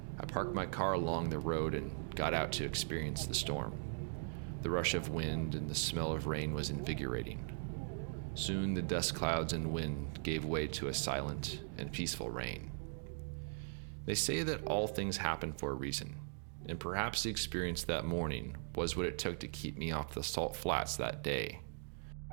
I parked my car along the road and got out to experience the storm. The rush of wind and the smell of rain was invigorating. Soon the dust clouds and wind gave way to a silent and peaceful rain. They say that all things happen for a reason, and perhaps the experience that morning was what it took to keep me off the salt flats that day.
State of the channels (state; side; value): silent; left; digital silence